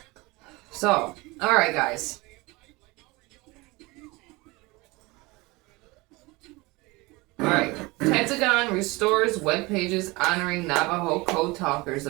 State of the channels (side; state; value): left; quieter; 23.5 dB